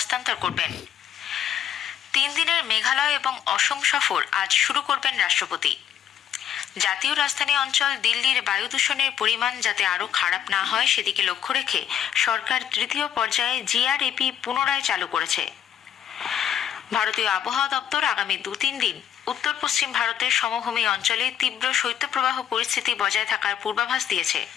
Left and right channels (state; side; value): quieter; right; 9.8 dB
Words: করবেন। 3 দিনের মেঘালয় এবং অসম সফর আজ শুরু করবেন রাষ্ট্রপতি। জাতীয় রাজধানী অঞ্চল দিল্লির বায়ু দূষণের পরিমাণ যাতে আরও খারাপ না হয় সেদিকে লক্ষ্য রেখে সরকার তৃতীয় পর্যায়ে জিআরএপি পুনরায় চালু করেছে। ভারতীয় আবহাওয়া দপ্তর আগামী 2-3 দিন উত্তর পশ্চিম ভারতের সমভূমি অঞ্চলে তীব্র শৈত্যপ্রবাহ পরিস্থিতি বজায় থাকার পূর্বাভাস দিয়েছে।